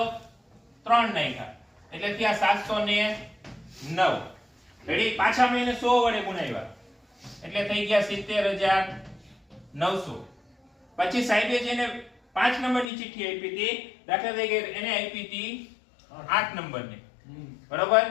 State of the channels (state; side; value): drops out; right; at 12.9 s